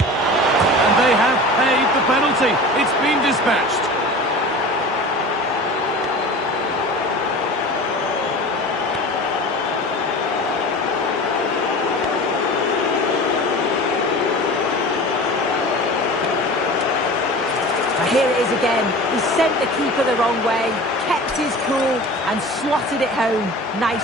they have paid the penalty. It's been dispatched. Now here it is again. He sent the keeper the wrong way, kept his cool and slotted it home.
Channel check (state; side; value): normal; both; correlation 0.36